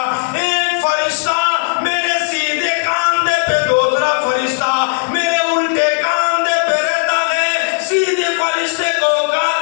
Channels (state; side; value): silent; right; 65 dB below the other